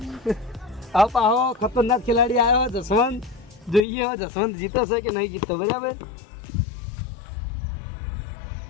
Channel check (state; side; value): drops out; right; at 3.9 s